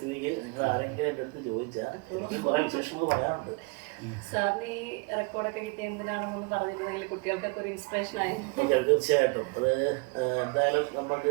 നിങ്ങൾ ആരെങ്കിലും എൻ്റെ അടുത്ത് ചോദിച്ചാൽ എനിക്ക് കുറേ വിശേഷങ്ങൾ പറയാറുണ്ട്. സാറിന് ഈ റെക്കോർഡൊക്കെ കിട്ടിയ എന്തിനാണെന്നൊന്ന് പറഞ്ഞിരുന്നെങ്കിൽ കുട്ടികൾക്കൊക്കെ ഒരു ഇൻസ്പിറേഷൻ ആയി. തീർച്ചയായിട്ടും അത് എന്തായാലും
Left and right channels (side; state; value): left; quieter; 30.3 dB